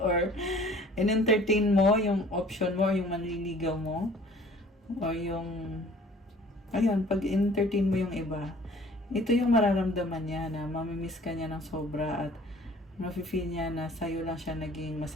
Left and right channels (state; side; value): normal; both; correlation 0.51